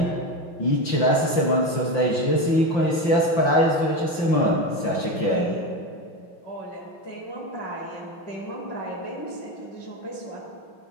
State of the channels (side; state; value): right; late; 5.8 ms